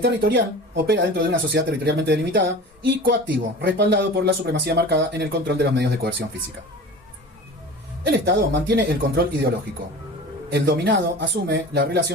opera dentro de una sociedad territorialmente delimitada. Y coactivo, respaldado por la supremacía marcada en el control de los medios de coerción física. El Estado mantiene el control ideológico. El dominado asume la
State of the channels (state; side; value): normal; both; correlation 0.37